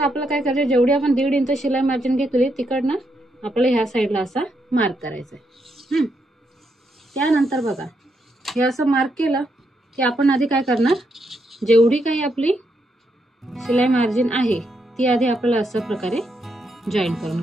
आपल्याला काय करायचं जेवढी आपण 1.5 इंच शिलाई मार्जिन घेतली तिकडनं आपल्याला ह्या साईडला असा मार्क करायचा आहे। त्यानंतर बघा हे असं मार्क केलं की आपण आधी काय करणार जेवढी काही आपली शिलाई मार्जिन आहे ती आधी आपल्याला अशा प्रकारे जॉईन करून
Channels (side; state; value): both; normal; correlation 0.79